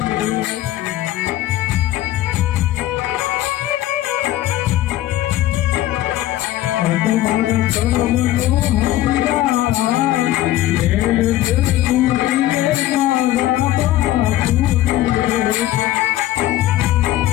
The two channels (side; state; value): right; quieter; 14.6 dB